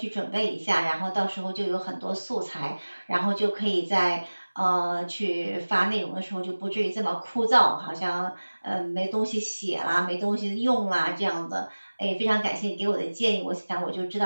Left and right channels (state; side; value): inverted; both; correlation -1.00